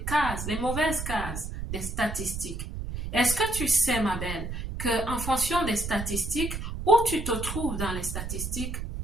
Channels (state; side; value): noise; right; rumble, 5 dB below the sound